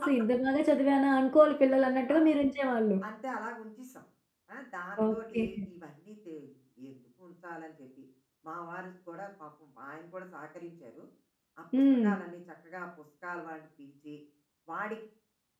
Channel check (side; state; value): both; identical; correlation 1.00